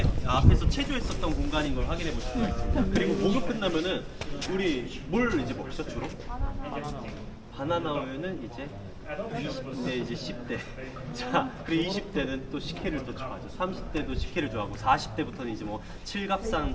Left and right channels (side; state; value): both; identical; correlation 1.00